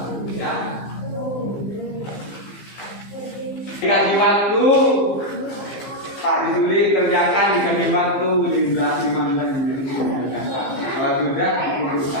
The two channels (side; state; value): right; late; 15 ms